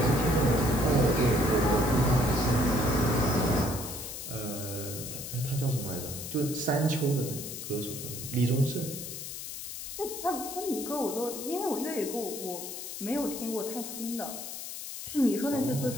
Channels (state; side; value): noise; left; hiss, 8 dB below the sound